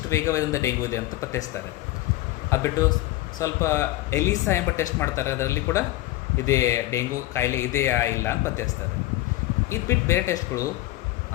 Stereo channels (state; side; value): quieter; right; 16.9 dB